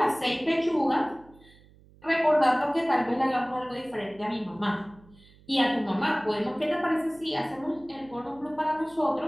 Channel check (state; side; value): noise; right; hum, 26 dB below the sound